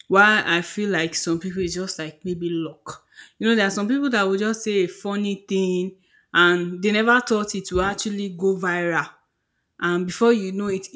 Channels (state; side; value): identical; both; correlation 1.00